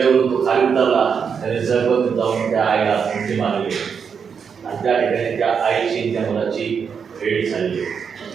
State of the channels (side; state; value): left; quieter; 6.5 dB